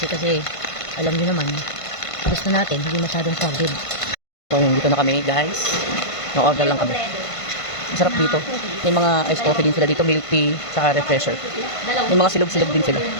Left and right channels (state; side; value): late; right; 1.5 ms